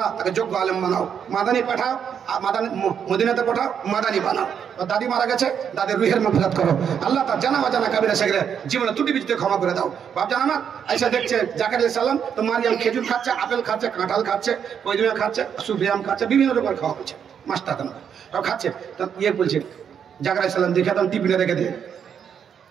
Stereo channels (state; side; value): quieter; left; 7.9 dB